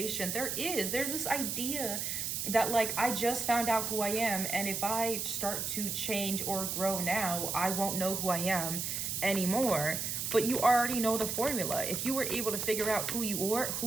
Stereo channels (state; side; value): noise; right; hiss, 2 dB below the sound